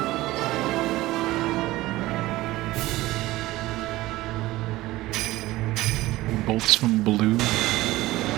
bolts from blue.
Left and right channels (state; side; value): quieter; left; 17.9 dB